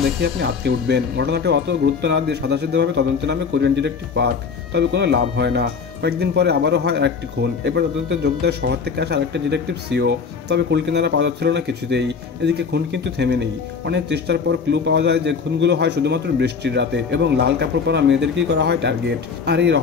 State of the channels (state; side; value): quieter; right; 5.6 dB